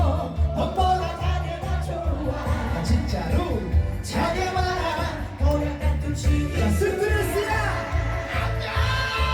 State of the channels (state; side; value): identical; both; correlation 1.00